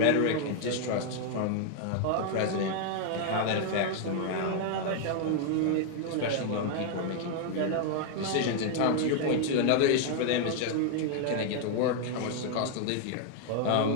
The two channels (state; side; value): different; both; correlation 0.00